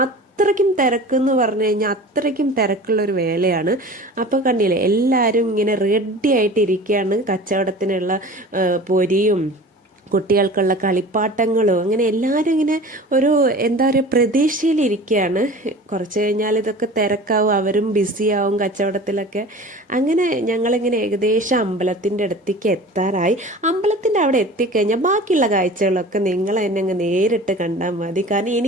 അത്രയ്ക്കും തിരക്കെന്ന് പറഞ്ഞു കഴിഞ്ഞാൽ അത്രയ്ക്കും തിരക്കുള്ളൊരു വേലയാണ്. അപ്പോൾ കണ്ടില്ലേ എല്ലാവരും ഇങ്ങനെ റെഡി ആയിട്ട് ഇരിക്കുകയാണ് കച്ചവടത്തിനുള്ള പൊരിയും കുട്ടികൾക്കുള്ള കളിപ്പാട്ടങ്ങളും അങ്ങനെ എല്ലാവരും ഇങ്ങനെ ഒരു എന്താ പറയുക പ്രതീക്ഷയിലിരിക്കുകയാണ്. കുറച്ച് കഴിഞ്ഞാൽ ഇതൊക്കെ തിരക്കാവും, അവരും ബിസിയാവും കച്ചവടത്തിലൊക്കെ. അങ്ങനെ ഞങ്ങളിങ്ങനെ ഏകദേശം അമ്പലത്തിൻ്റെ അടുത്തേക്ക് എത്താറായി. അമ്പലത്തിൻ്റെ അവിടെ എത്തിക്കഴിഞ്ഞാൽ ബാക്കിയുള്ള കാഴ്ചകളൊക്കെ നിങ്ങൾ തന്നെ അങ്ങ് നേരിട്ട് കണ്ടാൽ മതി, കാരണം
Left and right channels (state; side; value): normal; both; correlation 0.39